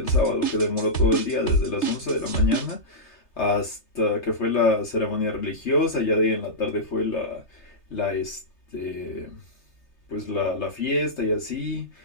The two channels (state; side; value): late; right; 3.3 ms